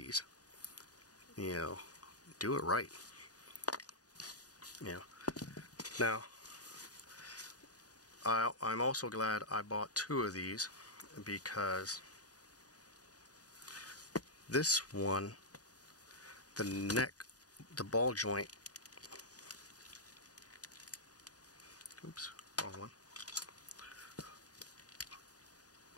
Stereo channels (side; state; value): right; late; 0.68 ms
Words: you know, do it right. You know. Now, I'm also glad I bought 2 of these, because this one, the neck, the ball joint, oops, wrong one.